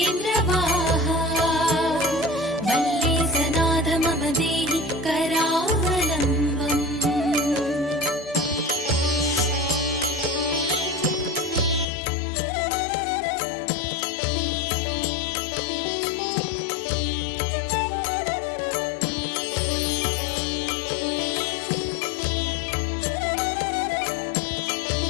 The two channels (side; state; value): right; drops out; at 11.9 s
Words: वल्लीसनाथ मम देहि करावलम्बम्।